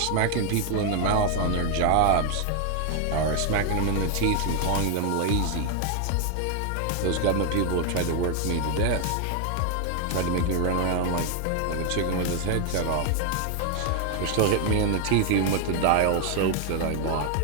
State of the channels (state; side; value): different; both; correlation 0.01